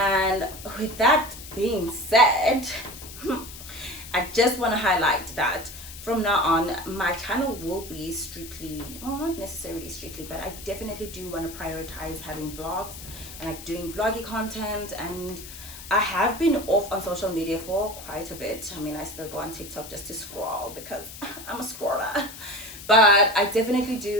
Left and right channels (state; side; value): noise; left; hiss, 14 dB below the sound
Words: with that being said, I just want to highlight that from now on, my channel will be strictly, well, not necessarily strictly, but I definitely do want to prioritize having vlogs and like doing vloggy content. And I have been off on social media for quite a bit. I mean, I still go on TikTok just to scroll because I'm a scroller. But I definitely